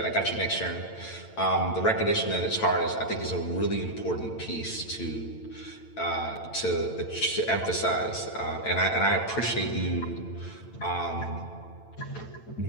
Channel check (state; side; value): late; right; 8.9 ms